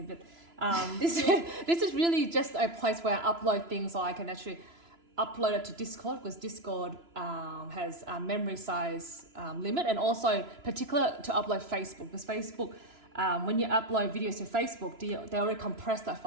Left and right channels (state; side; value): late; left; 3.0 ms